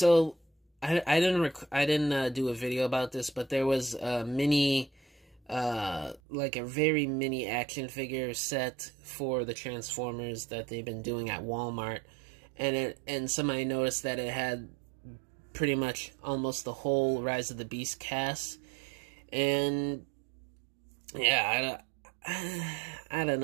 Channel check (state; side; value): drops out; left; at 6.2 s